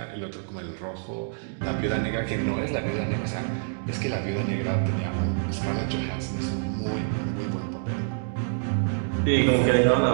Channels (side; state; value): left; silent; digital silence